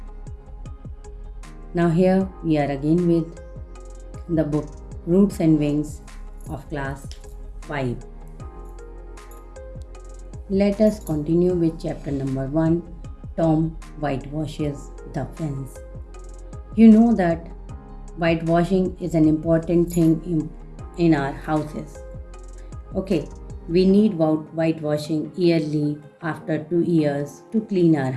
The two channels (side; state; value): both; identical; correlation 1.00